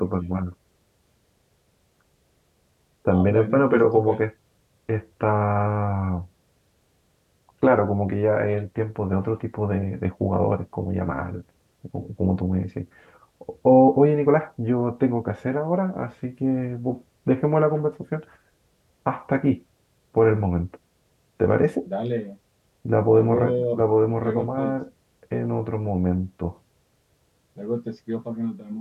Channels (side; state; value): both; identical; correlation 1.00